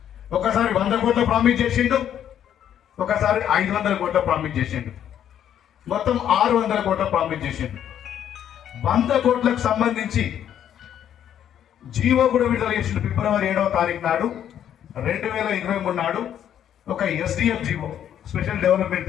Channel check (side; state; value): right; quieter; 10.0 dB